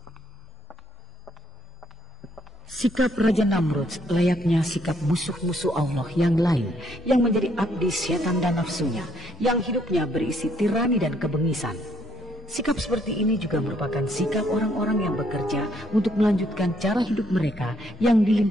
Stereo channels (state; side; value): normal; both; correlation 0.70